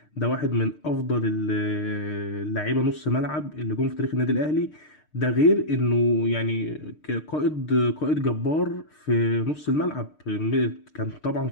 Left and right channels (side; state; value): right; late; 6.6 ms